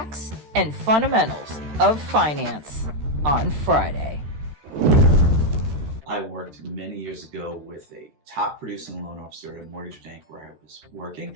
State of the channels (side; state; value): left; late; 13 ms